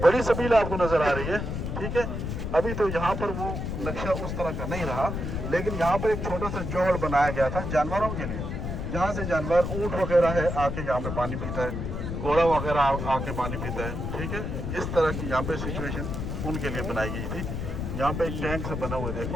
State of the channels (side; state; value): left; noise; rumble, 4 dB below the sound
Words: बड़ी सबील आपको नजर आ रही है, ठीक है। अभी तो यहाँ पर वो नक्शा उस तरह का नहीं रहा, लेकिन यहाँ पर एक छोटा सा जोहड़ बनाया गया था जानवरों के लिए, जहाँ से जानवर ऊँट वगैरह है आके यहाँ पे पानी पीता है, घोड़ा वगैरह आके पानी पीता है, ठीक है। इस तरह की यहाँ पे सिचुएशन उनके लिए बनाई गई थी। यहाँ पे एक टैंक से बना हुआ है,